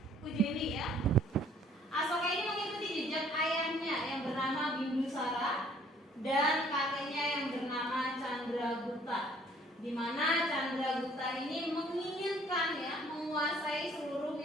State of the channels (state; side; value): normal; both; correlation 0.59